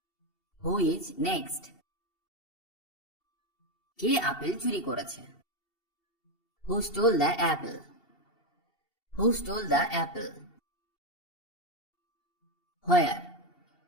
who is next. কে আপেল চুরি করেছে? Who stole the apple, who stole the apple. Where,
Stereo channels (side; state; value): right; late; 2.7 ms